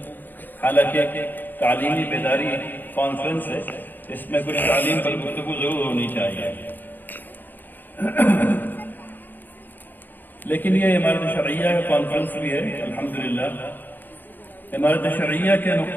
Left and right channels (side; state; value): right; late; 0.090 ms